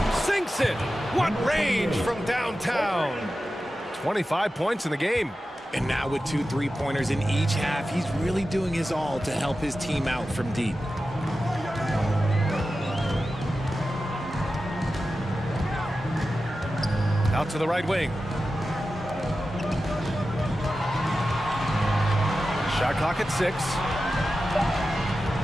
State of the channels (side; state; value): both; normal; correlation 0.93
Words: Sinks it. What range from downtown. 25 points in the game. And now with 2 3-pointers in each half, he's really doing his all to help his team out from deep. Out to the right wing. Shot clock at 6.